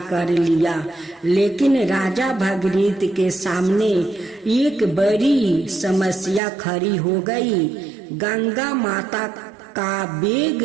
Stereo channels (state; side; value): drops out; left; at 6.4 s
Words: कर लिया, लेकिन राजा भागीरथ के सामने एक बड़ी समस्या खड़ी हो गई। गंगा माता का